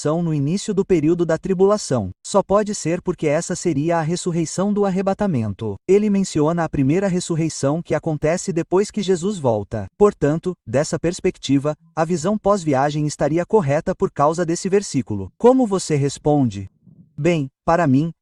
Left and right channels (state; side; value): identical; both; correlation 1.00